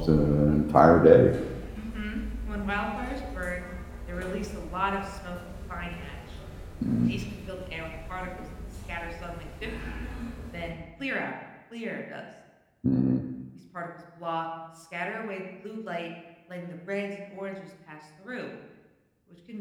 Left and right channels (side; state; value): both; identical; correlation 1.00